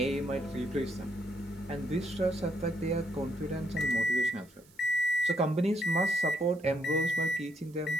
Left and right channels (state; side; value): noise; right; hiss, 28 dB below the sound